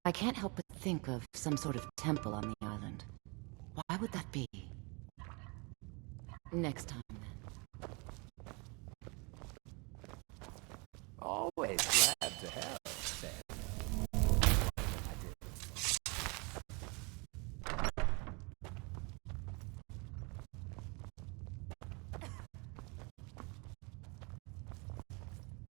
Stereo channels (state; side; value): quieter; left; 30.6 dB